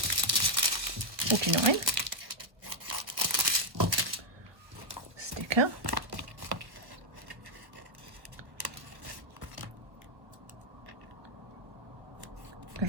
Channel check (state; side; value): late; left; 1.3 ms